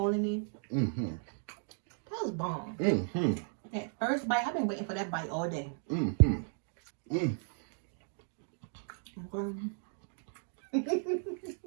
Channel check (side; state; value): left; silent; 54 dB below the other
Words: in it. That was bomb. That first bite, I've been waiting for that bite all day. Okay.